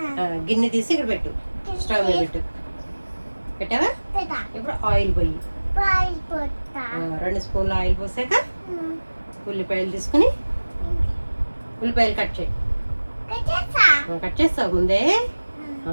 గిన్నె తీసి ఇక్కడ పెట్టు. స్టవ్ మీద పెట్టు. పెట్టావా? ఇప్పుడు ఆయిల్ పోయి 2 స్పూన్ల ఆయిల్ పోసాక ఉల్లిపాయలు తీసుకుని ఉల్లిపాయలు కట్ చేయి. కట్ చేస్తావు ముందే.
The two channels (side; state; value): both; inverted; correlation -1.00